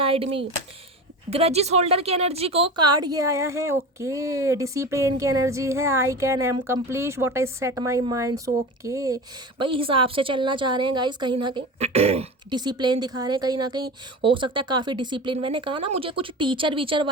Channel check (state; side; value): normal; both; correlation 0.30